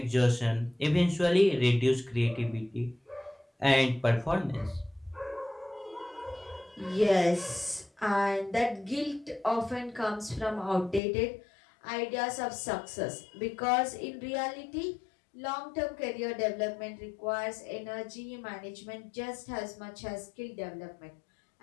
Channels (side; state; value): right; drops out; at 11.0 s